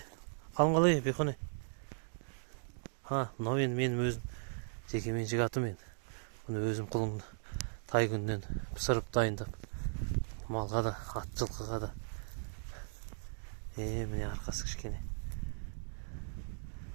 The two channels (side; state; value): left; silent; digital silence